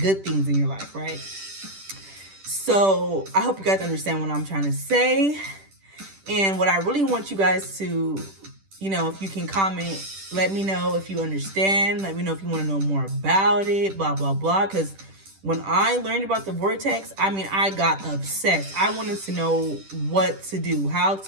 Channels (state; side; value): late; left; 10 ms